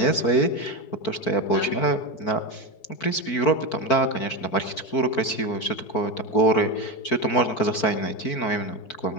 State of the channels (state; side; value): late; right; 4.5 ms